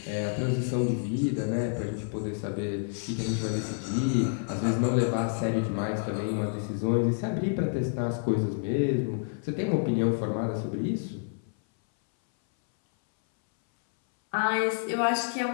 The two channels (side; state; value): right; silent; 59 dB below the other